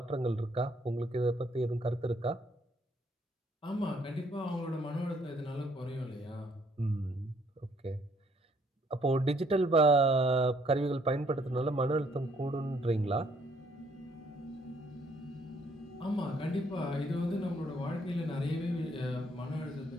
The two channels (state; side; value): normal; both; correlation 0.67